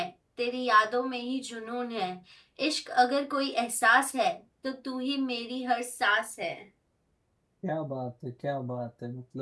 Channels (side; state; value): both; identical; correlation 1.00